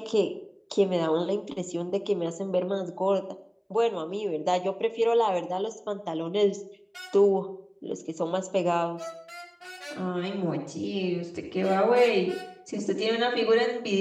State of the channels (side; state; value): both; identical; correlation 1.00